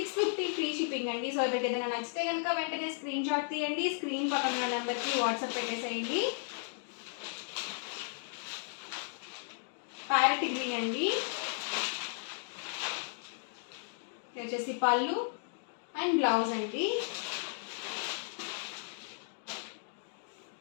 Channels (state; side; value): silent; right; 55 dB below the other